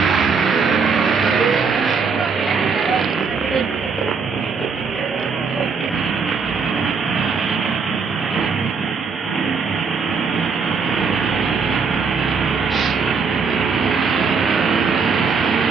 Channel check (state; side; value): quieter; left; 5.3 dB